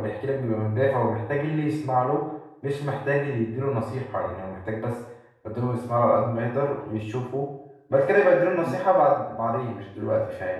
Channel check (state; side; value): identical; both; correlation 1.00